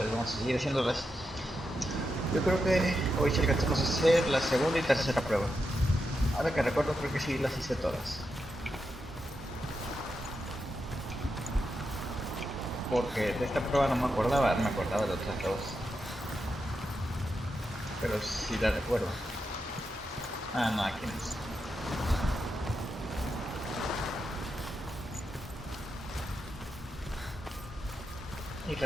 vamos a seguir haciéndolas. Yo creo que hoy sí alcanzamos a hacer la segunda y tercera prueba. Ahora que recuerdo, creo que sí las hice todas. Porque de esta prueba no me acordaba de otras dos. Pero sí la recuerdo. Ah, no, aquí no es. Y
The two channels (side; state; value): both; normal; correlation 0.86